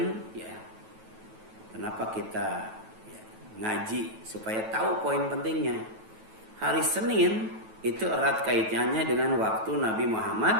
ya. Kenapa kita ya, ngaji supaya tahu poin pentingnya. Hari Senin itu erat kaitannya dengan waktu Nabi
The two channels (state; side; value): late; left; 9.2 ms